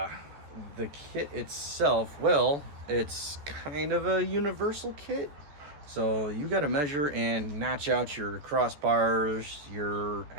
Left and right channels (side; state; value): left; late; 14 ms